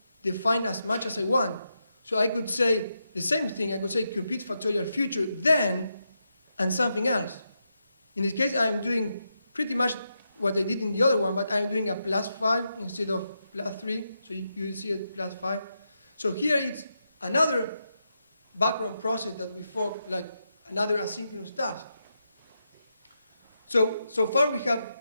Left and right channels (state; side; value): inverted; both; correlation -0.85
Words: define as much as I want. So I could say the same thing. I could say compute factorial future, then, and something else. In this case, I am doing pretty much what I did in the other one, but I am doing a plus 5 instead of plus 3. So you see it plus 5. So here it's another background process that we fork, like another asynchronous task. So far we have